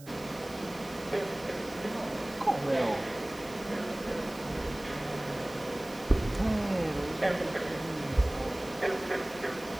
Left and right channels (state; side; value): noise; right; hiss, 20 dB below the sound